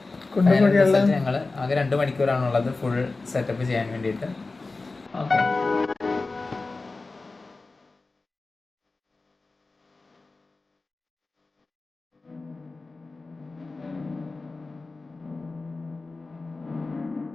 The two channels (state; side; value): quieter; right; 3.6 dB